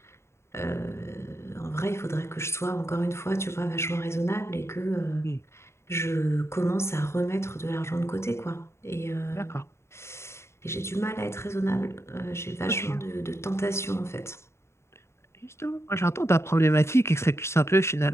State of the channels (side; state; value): right; late; 0.13 ms